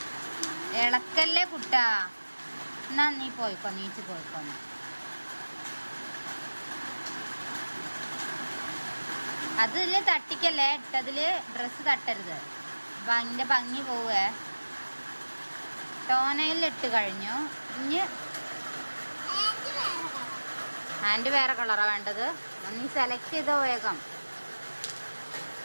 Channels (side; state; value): both; inverted; correlation -1.00